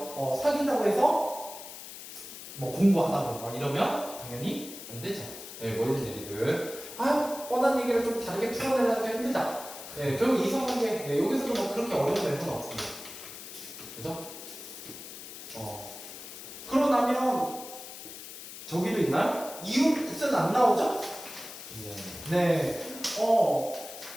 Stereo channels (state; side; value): noise; left; hiss, 12 dB below the sound